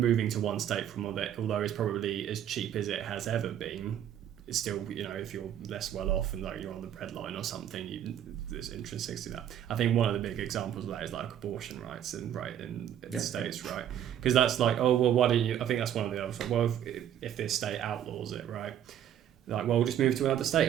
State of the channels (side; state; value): left; quieter; 10.3 dB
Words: to one state from although it's probably as cheap as it has ever been, it's still, you know, if you're less well off and like you're on the breadline or something, there's intrinsic to that. I think one of the big examples of that is like abortion rights in the states, right? Because that's like, oh well, why don't you? I think that's one of the other. Well, if this state outlaws it, right? Like, well, we'll just move to another